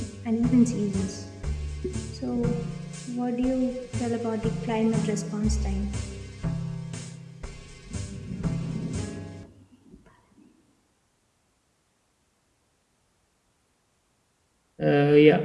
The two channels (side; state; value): both; identical; correlation 1.00